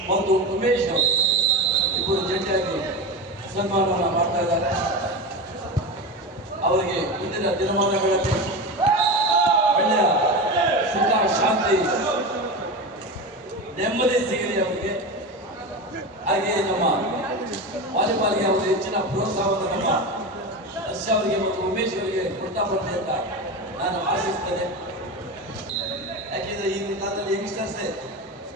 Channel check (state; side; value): normal; both; correlation 0.22